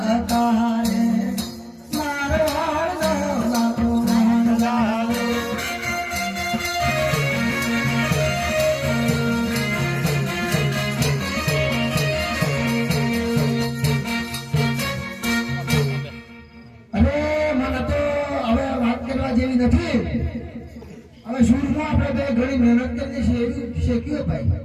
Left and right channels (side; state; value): both; identical; correlation 1.00